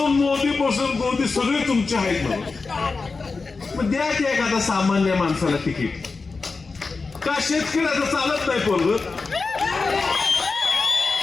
मोदी सगळे तुमचे आहेत ना. मग द्या की एखादा सामान्य माणसाला तिकीट. का शेतकऱ्याचं चालत नाही पोरग?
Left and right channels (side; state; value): right; quieter; 4.2 dB